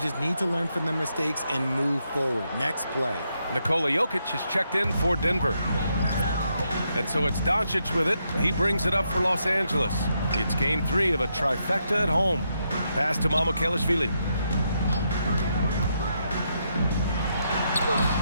need to learn from their mistakes and move forward. Next play. Nikola Jokic is checked in for Denver. And so it's Doncic with it. He brings it up for Los Angeles. It's game 3 of a trifecta at home. Pass to Mamukelashvili.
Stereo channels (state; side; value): inverted; both; correlation -0.80